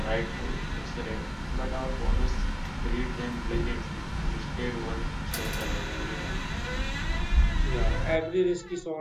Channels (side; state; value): both; identical; correlation 1.00